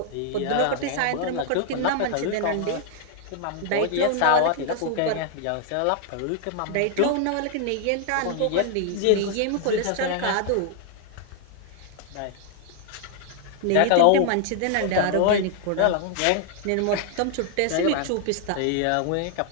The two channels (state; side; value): different; both; correlation 0.00